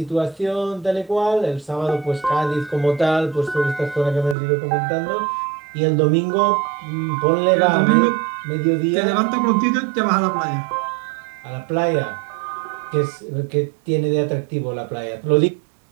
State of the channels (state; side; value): drops out; left; at 4.4 s